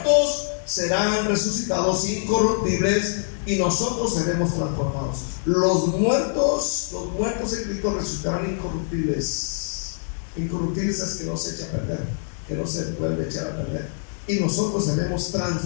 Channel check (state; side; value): silent; right; digital silence